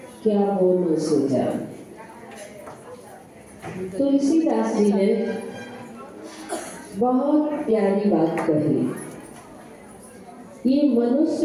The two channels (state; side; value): identical; both; correlation 1.00